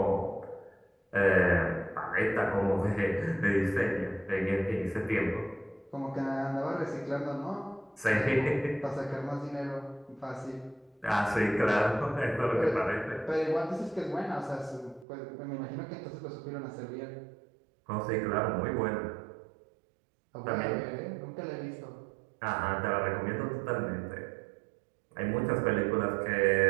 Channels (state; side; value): drops out; left; at 15.1 s